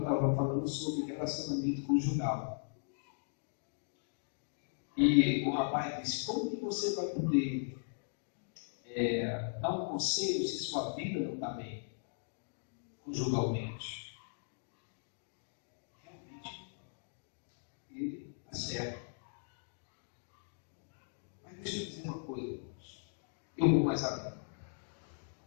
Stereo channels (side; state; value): right; silent; digital silence